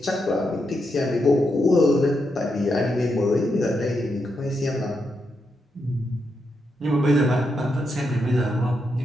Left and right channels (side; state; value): both; normal; correlation 0.83